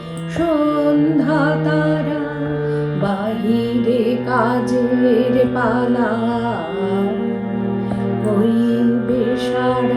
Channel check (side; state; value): both; identical; correlation 1.00